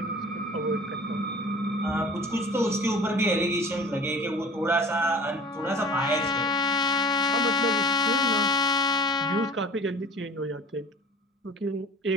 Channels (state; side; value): normal; both; correlation 0.43